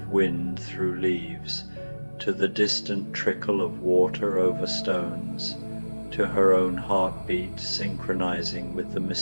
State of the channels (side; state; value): both; inverted; correlation -1.00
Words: wind through leaves, to the distant trickle of water over stones, to her own heartbeat synchronizing with the